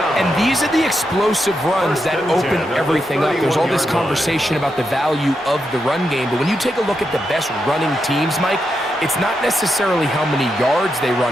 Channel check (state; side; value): normal; both; correlation 0.85